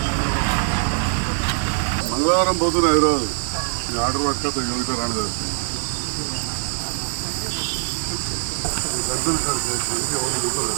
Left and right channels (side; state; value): left; silent; 64 dB below the other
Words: మంగళవారం పోతున్నా ఈరోజు ఆర్డర్ పట్టుకొస్తా యోగిత రాని పెద్దలు సార్ చేసి ఎవరు దిగుతుంది